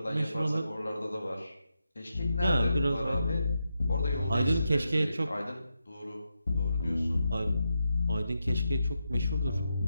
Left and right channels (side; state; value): both; inverted; correlation -0.86